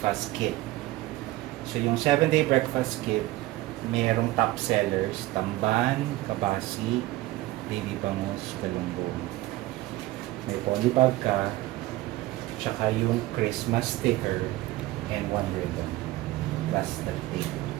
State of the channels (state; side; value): quieter; left; 17.8 dB